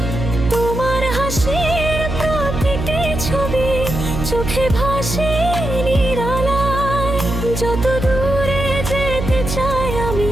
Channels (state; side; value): noise; right; hum, 4 dB below the sound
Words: তোমার হাসির প্রতিটি ছবি চোখে ভাসে নিরালায়। যত দূরে যেতে চাই